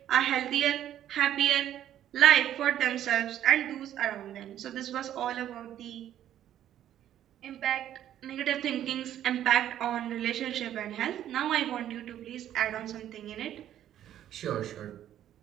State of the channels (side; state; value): left; quieter; 11.4 dB